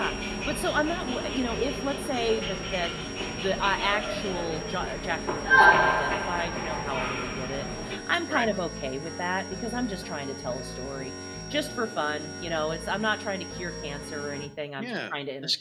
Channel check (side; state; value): both; identical; correlation 1.00